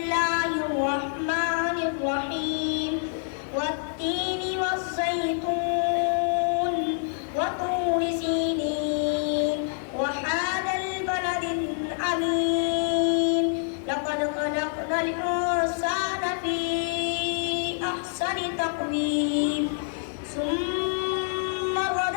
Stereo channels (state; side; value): silent; right; digital silence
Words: वत्तीनि वज़्ज़ैतून वतूरि सीनीन वहादल बलदिल अमीन लक़द खलक़नल इंसाना फ़ी अहसनि तक़वीम सुम्मा